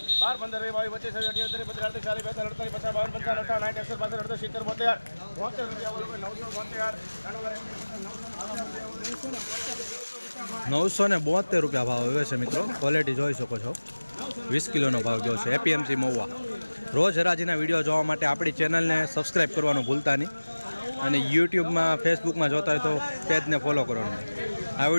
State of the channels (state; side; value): inverted; both; correlation -1.00